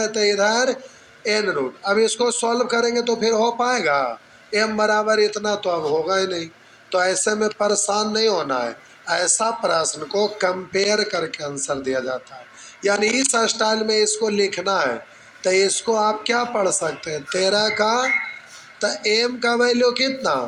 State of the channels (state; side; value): identical; both; correlation 1.00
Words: तो इधर एन रूट। अब इसको सॉल्व करेंगे तो फिर हो पाएगा? एम बराबर इतना तो अब होगा ही नहीं। तो ऐसे में परेशान नहीं होना है, ऐसा प्रश्न को कंपेयर करके आंसर दिया जाता है, यानी इस स्टाइल में इसको लिखना है। तो इसको आप क्या पढ़ सकते हैं, 13 का, तो एम का वैल्यू